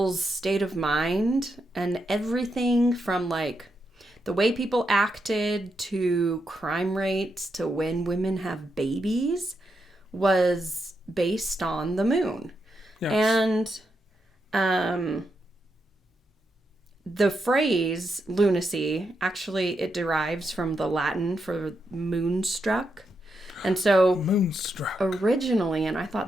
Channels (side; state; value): both; normal; correlation 0.83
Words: state of mind and everything from like the way people acted to crime rates to when women have babies was based on the moon. Yes. And the phrase lunacy, actually, it derives from the Latin for moonstruck. And so moonstruck. Originally, and I